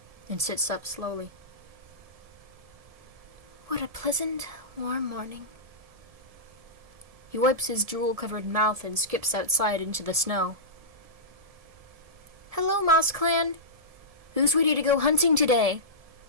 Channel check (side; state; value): left; late; 1.7 ms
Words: and sits up slowly. What a pleasant, warm morning. He wipes his drool-covered mouth and skips outside into the snow. Hello, Moss Clan! Who's ready to go hunting today?